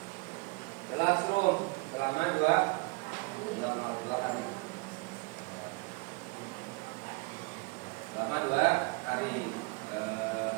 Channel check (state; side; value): quieter; left; 27.3 dB